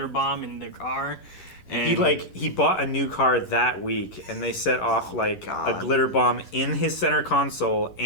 bomb in their car. And He bought a new car that week, and they set off like a glitter bomb in his center console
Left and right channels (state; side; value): late; right; 11 ms